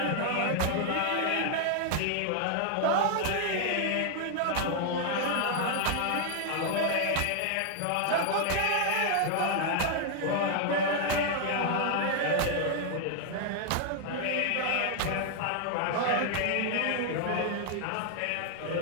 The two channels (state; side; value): different; both; correlation 0.00